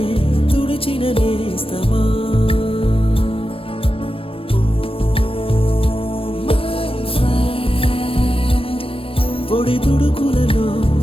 తుడిచిన నేస్తమా పొడి తుడుకులలో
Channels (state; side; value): late; right; 0.27 ms